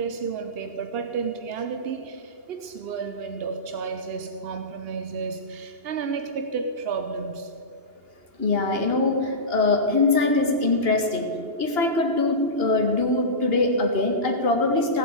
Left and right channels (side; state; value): left; late; 2.8 ms